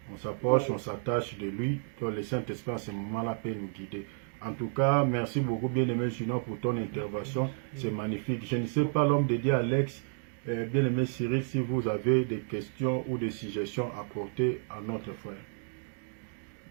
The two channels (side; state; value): left; silent; 56 dB below the other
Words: On s'approche, on s'attache de lui. Donc, le Saint-Esprit, à ce moment-là, peut nous guider. En tout cas, merci beaucoup, bien-aimé Junior, pour ton intervention. C'est magnifique. Je ne sais pas, l'homme de Dieu, Alex, bien-aimé Cyril, si vous avez des questions ou des suggestions à apporter à notre frère.